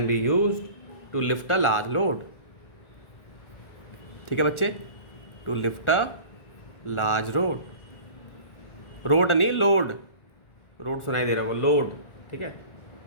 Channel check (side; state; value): right; late; 1.4 ms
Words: to lift a large load, ठीक है बच्चे, to lift a large road नहीं लोड, रोड सुनाई दे रहा है वो लोड, ठीक है,